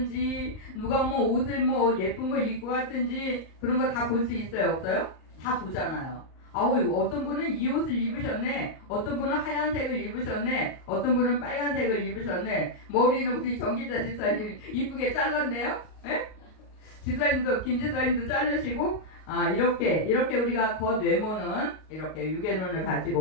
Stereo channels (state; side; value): late; right; 38 ms